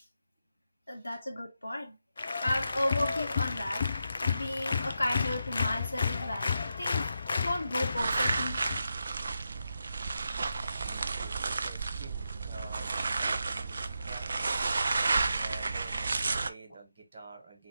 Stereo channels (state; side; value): inverted; both; correlation -0.86